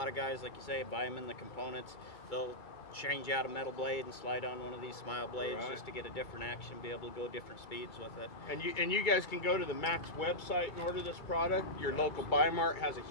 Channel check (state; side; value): late; right; 2.3 ms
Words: of guys, like you say, buy them in the components. They'll change out a metal blade and slide on one of these smile blades Right. just to get a different action, be able to go different speeds with it. And you guys can go to the Max website and order this product. Your local Buy Mart has a